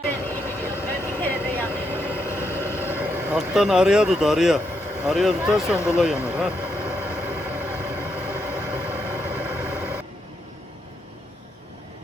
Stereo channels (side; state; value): both; normal; correlation 0.80